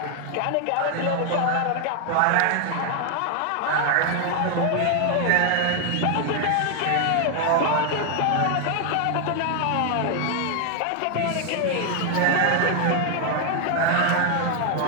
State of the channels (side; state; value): both; different; correlation 0.00